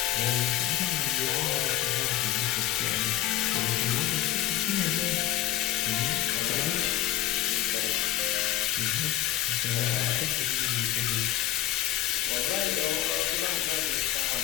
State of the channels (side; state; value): right; quieter; 13.5 dB